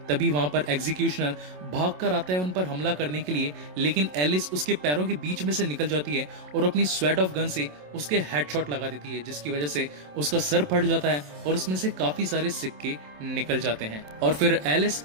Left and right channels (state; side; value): late; left; 27 ms